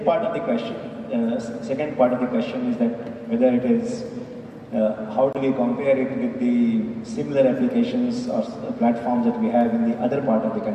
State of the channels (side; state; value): both; identical; correlation 1.00